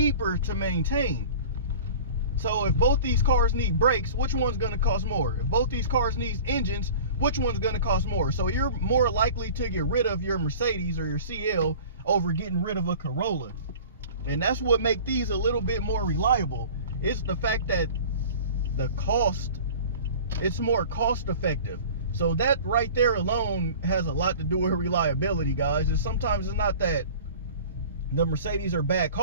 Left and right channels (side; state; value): both; inverted; correlation -0.41